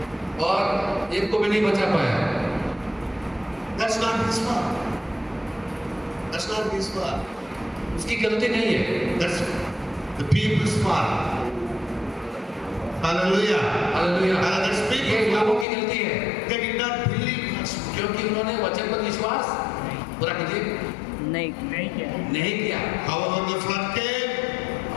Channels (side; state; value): right; drops out; at 15.7 s